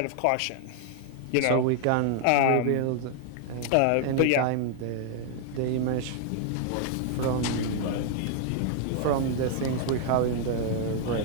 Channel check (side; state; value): both; different; correlation 0.00